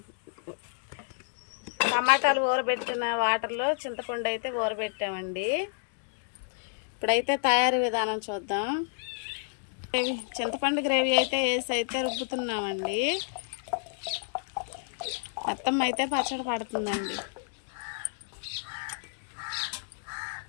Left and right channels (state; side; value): silent; right; digital silence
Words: టమాటాలు ఊరబెట్టిన వాటర్లో చింతపండు అయితే ఊరబెట్టామండి. ఇప్పుడైతే తయారీ విధానం చూద్దాం. చింతపండు గ్రేవీ అయితే వేసి అయితే రుబ్బుతున్నామండి. మొత్తం అయితే పచ్చడి పడుతుందండి.